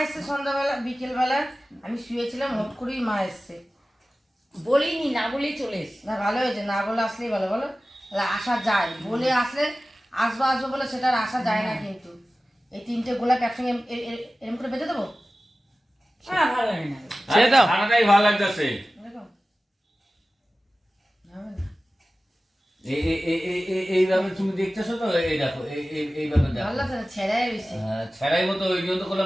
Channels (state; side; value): normal; both; correlation 0.96